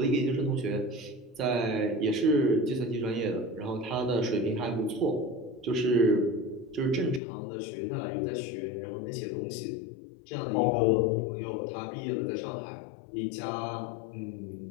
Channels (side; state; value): right; drops out; at 7.2 s